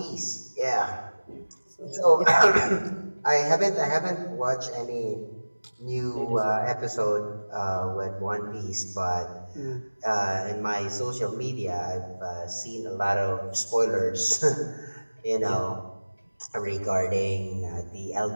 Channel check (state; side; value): inverted; both; correlation -1.00